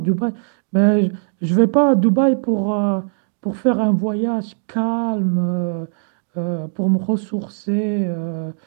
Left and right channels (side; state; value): left; silent; digital silence